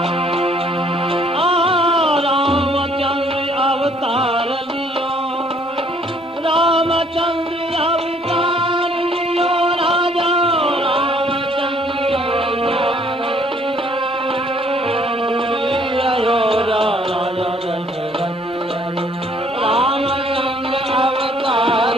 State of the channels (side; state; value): both; normal; correlation 0.62